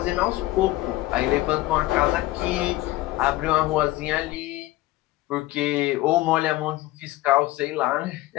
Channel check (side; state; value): right; quieter; 17.9 dB